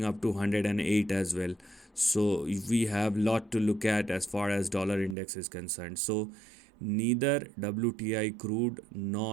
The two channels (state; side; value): drops out; left; at 5.2 s